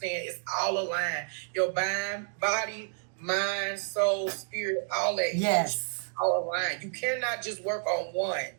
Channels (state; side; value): silent; left; 55 dB below the other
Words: it's all aligned. Your body, mind, soul, spirit, all that. Yes. All aligned. You cannot just work on one.